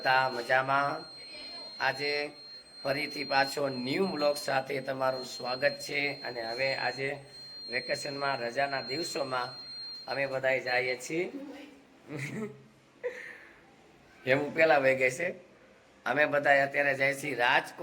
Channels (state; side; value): identical; both; correlation 1.00